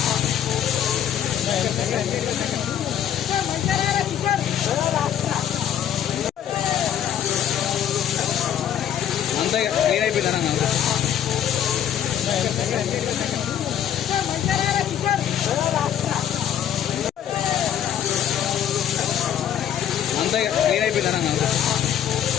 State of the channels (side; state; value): right; quieter; 9.8 dB